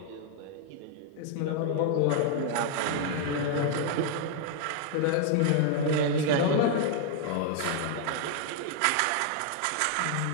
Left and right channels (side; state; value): both; different; correlation 0.00